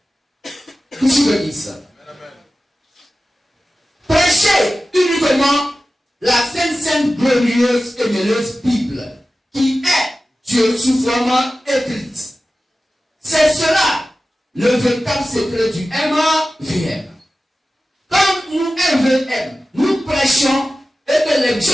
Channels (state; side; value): normal; both; correlation 0.95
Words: Que tu me dises. Prêchez uniquement la sainte, glorieuse et merveilleuse Bible, qui est Dieu sous forme écrite. C'est cela le véritable secret du MVM. Comme nous MVM, nous prêchons et que les